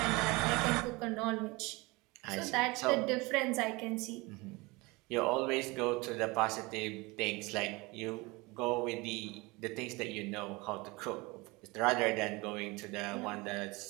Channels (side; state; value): left; quieter; 24.5 dB